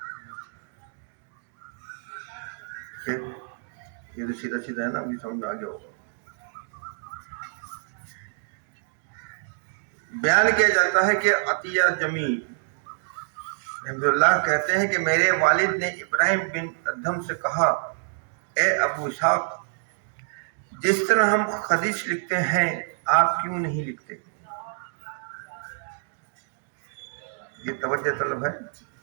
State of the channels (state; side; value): silent; left; digital silence